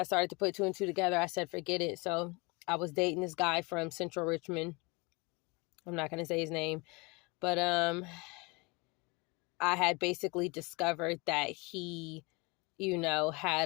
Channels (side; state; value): right; quieter; 27.3 dB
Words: started to put two and two together, I said, forget it. So I was dating this guy from Central Richmond. I'm not going to say his name, but I had basically discovered that he,